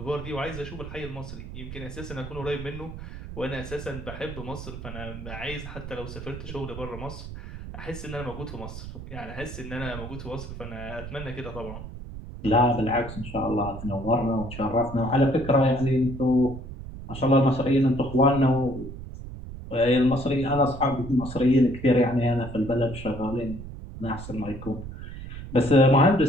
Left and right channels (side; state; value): right; noise; rumble, 11 dB below the sound